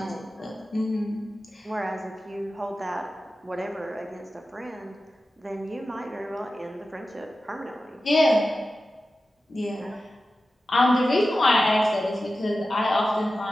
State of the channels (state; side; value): normal; both; correlation 0.94